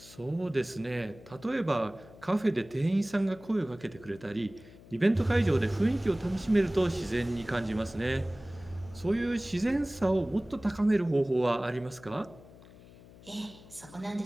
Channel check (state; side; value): noise; left; hum, 21 dB below the sound